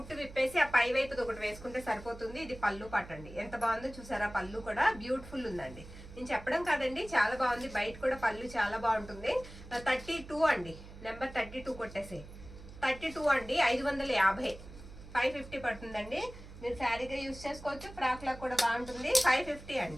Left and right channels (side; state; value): right; noise; hum, 16 dB below the sound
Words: విప్పేసి ఆ పై వైపు ఒకటి వేసుకుంటే సరిపోతుంది. ఇది పళ్ళు పట్టండి, ఎంత బాగుందో చూసారా. పళ్ళు కూడా బ్యూటిఫుల్ ఉందండి. నేను చెప్పడం కాదండి, చాలా బాగుంది. బయట కూడా పళ్ళు చాలా బాగుంటుంది. 32 అండి, నెంబర్ 32 కొట్టేసి 32 అండి. 550, 550 పడుతుందండి. మీరు శారీగా యూజ్ చేసుకోవచ్చు, ఫ్రాక్ లా కూడా బాగుంటుంది. 550